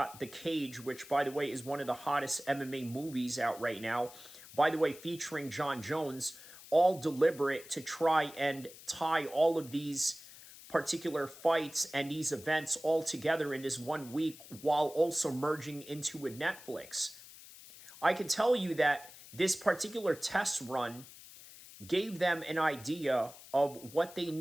The Cage, which, by the way, is one of the hottest MMA movies out right now. By the way, featuring John Jones, all deliberate to try and tie all of these particular fights and these events all together in this 1 week, while also merging into a Netflix. I can tell you that this particular test run gave them an idea of what they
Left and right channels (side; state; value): left; noise; hiss, 18 dB below the sound